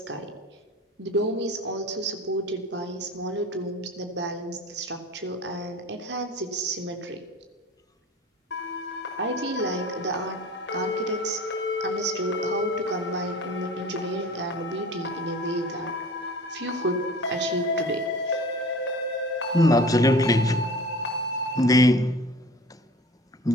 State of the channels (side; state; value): both; normal; correlation 0.40